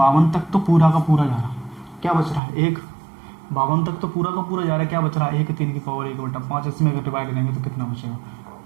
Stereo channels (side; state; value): left; drops out; at 2.4 s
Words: तक तो पूरा का पूरा जा रहा है। क्या बच रहा है, 1, 52 तक तो पूरा का पूरा जा रहा है, क्या बच रहा है, 1, 3 की पावर 1/5। इसमें अगर डिवाइड देंगे तो कितना बचेगा,